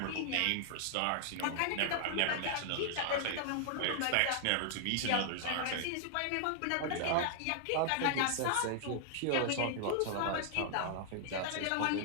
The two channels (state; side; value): different; both; correlation 0.00